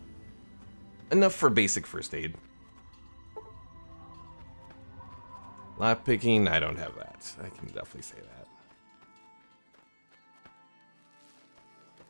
Enough for basic first aid. Lock picking, I don't have that. I can definitely say that.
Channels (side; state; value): both; inverted; correlation -1.00